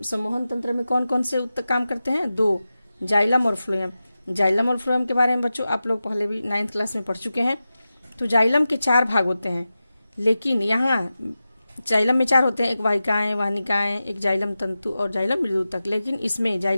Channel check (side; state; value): both; inverted; correlation -0.93